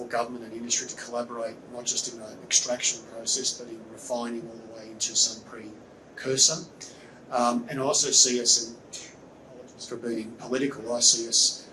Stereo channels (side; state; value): both; identical; correlation 1.00